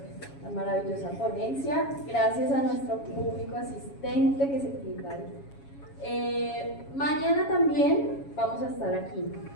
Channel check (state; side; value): late; right; 7.2 ms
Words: la maravillosa ponencia. Gracias a nuestro público asistente que se quita. Mañana también vamos a estar aquí.